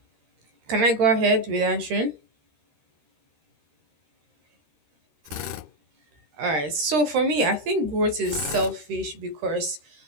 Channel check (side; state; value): left; late; 13 ms